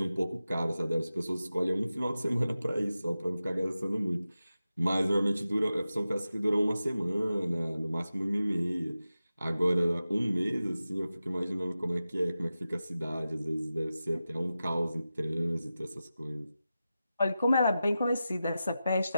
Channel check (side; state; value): both; inverted; correlation -0.93